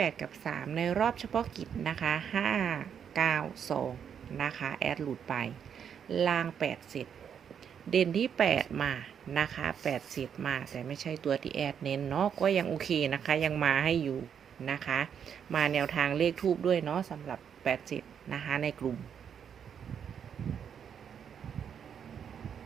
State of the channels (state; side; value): quieter; left; 7.9 dB